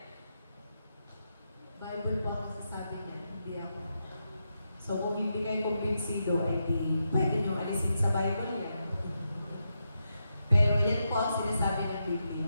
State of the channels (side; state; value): both; inverted; correlation -0.85